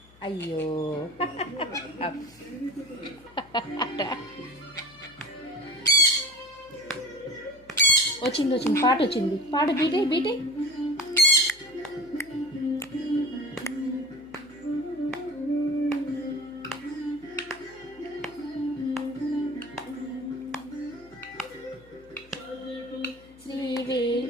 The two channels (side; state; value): left; noise; hum, 26 dB below the sound